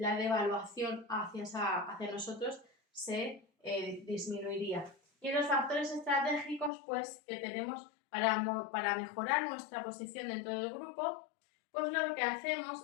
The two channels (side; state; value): right; drops out; at 6.7 s